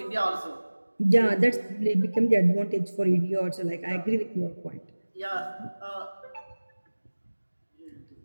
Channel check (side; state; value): both; inverted; correlation -1.00